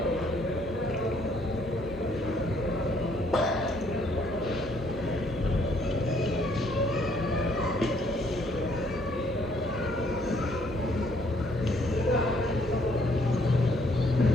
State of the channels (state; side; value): normal; both; correlation 0.66